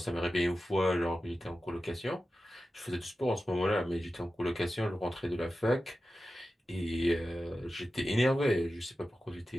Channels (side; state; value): both; normal; correlation 0.93